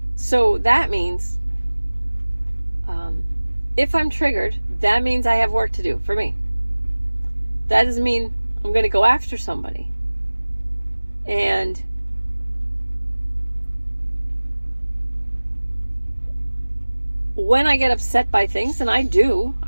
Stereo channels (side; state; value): both; inverted; correlation -1.00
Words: So that means, if I'm triggered, that means I have work to do for me. That doesn't mean I'm going to go after somebody. And when I get upset by things, and I